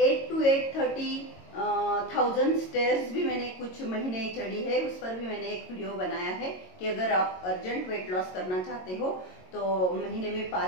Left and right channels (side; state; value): right; late; 22 ms